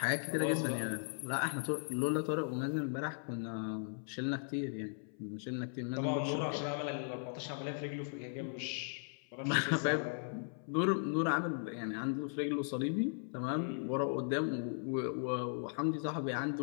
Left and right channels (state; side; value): silent; right; 53 dB below the other